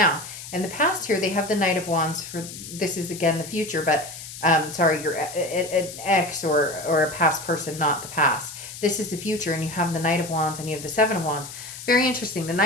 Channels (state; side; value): noise; left; hiss, 12 dB below the sound